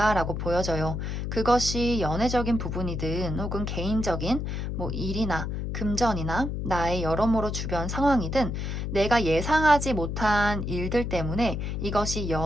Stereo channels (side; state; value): left; noise; hum, 3 dB below the sound